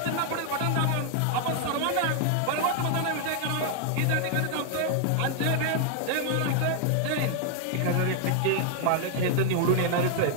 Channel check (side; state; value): both; different; correlation 0.00